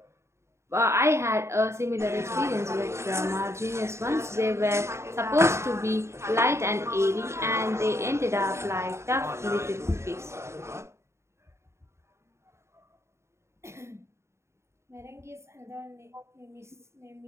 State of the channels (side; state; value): left; late; 0.13 ms